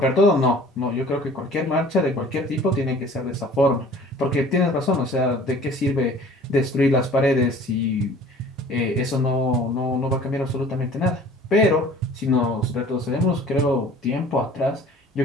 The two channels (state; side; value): normal; both; correlation 0.49